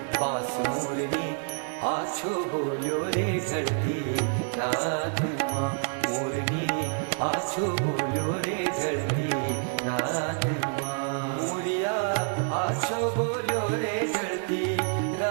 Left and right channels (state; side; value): silent; left; 57 dB below the other